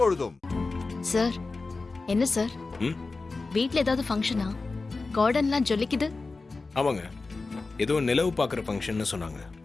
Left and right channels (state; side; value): quieter; right; 3.8 dB